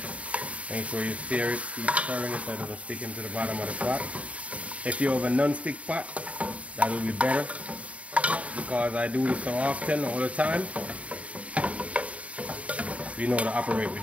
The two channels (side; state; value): left; late; 0.066 ms